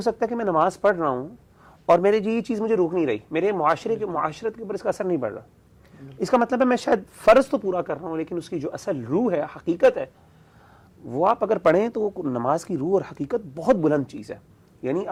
سکتا ہے کہ میں نماز پڑھ رہا ہوں اور میرے یہ چیز مجھے روک نہیں رہی, میرے معاشرت کے اوپر اس کا اثر نہیں پڑ رہا. اس کا مطلب ہے میں شاید فرض تو پورا کر رہا ہوں, لیکن اس کی جو اصل روح ہے, حقیقت ہے, وہ آپ اگر پڑھیں تو نماز کی روح اور حقیقت بہت بلند چیز ہے. یعنی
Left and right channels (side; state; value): both; identical; correlation 1.00